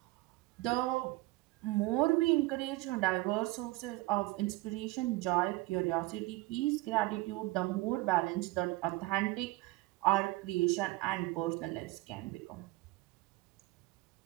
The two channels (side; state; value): left; quieter; 20.6 dB